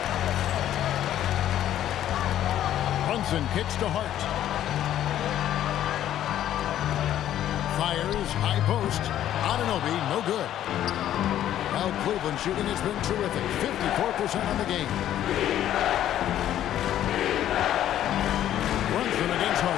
Brunson kicks to Hart. Fires, high post. Anunoby, no good. Well, Cleveland shooting has been terrific. 54% on the game. Brunson against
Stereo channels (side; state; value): right; quieter; 11.7 dB